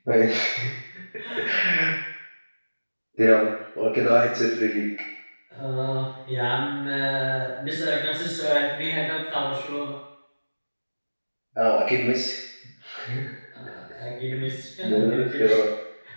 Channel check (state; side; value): inverted; both; correlation -1.00